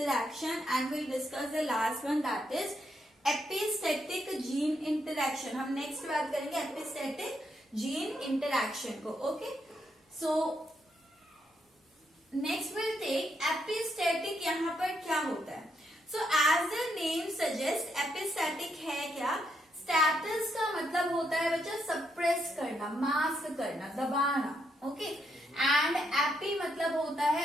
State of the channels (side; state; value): both; normal; correlation 0.78